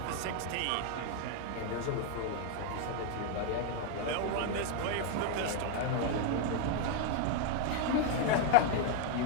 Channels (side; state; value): both; different; correlation 0.00